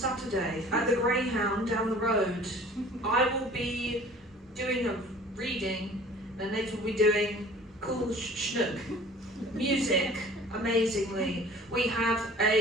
at the Greyhound down the road. I will be doing a reading, and Nate will be doing cool schnook. Music, amazingly. We have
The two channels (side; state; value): both; normal; correlation 0.47